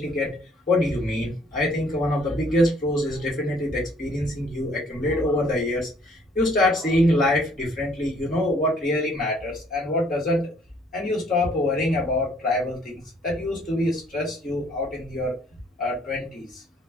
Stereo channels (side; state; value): both; normal; correlation 0.62